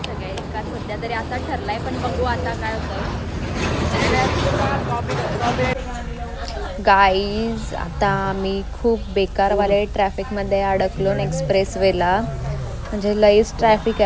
सगळ्या एकाच सध्या तरी असा ठरलाय, पण बघू आता काय होतं. गाईज, आता आम्ही खूप बेकारवाले ट्रॅफिकमध्ये अडकलो एक्सप्रेस वेला. म्हणजे लईच ट्रॅफिक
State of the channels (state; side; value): identical; both; correlation 1.00